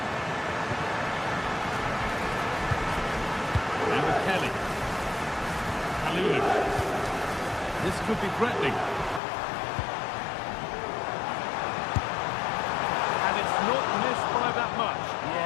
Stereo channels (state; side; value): drops out; right; at 9.2 s